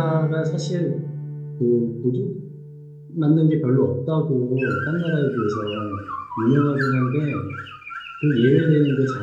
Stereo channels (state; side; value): identical; both; correlation 1.00